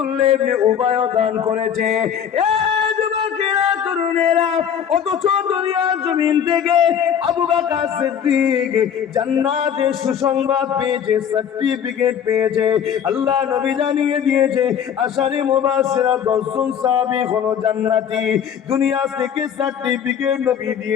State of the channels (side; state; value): right; quieter; 8.4 dB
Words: ইবনে উবাই দান করেছে। অথচ দুনিয়ার জমিন থেকে আবু বকর সিদ্দিক জান্নাতের সুসংবাদ পেয়েছে, সার্টিফিকেট পেয়েছে। আল্লাহ নবী জানিয়ে দিয়েছে আশারে মুবাশশিরা 10 জন সাহাবী হলো জান্নাতি। দুনিয়া থেকে সার্টিফিকেট নবী